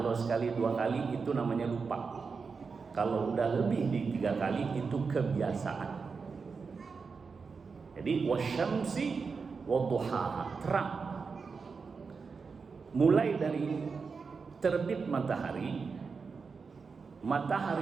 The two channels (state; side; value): quieter; left; 5.1 dB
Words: sekali 2 kali itu namanya lupa. Kalau udah lebih di 3 kali itu kebiasaan. Jadi wasyamsi wadduhaha, terang. Mulai dari terbit matahari,